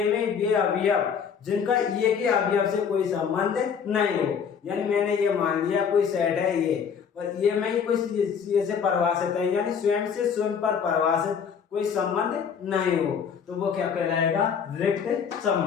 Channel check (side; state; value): right; quieter; 6.9 dB